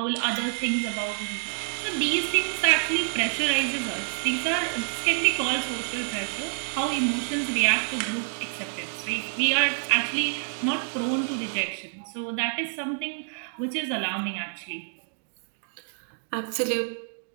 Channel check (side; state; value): left; silent; digital silence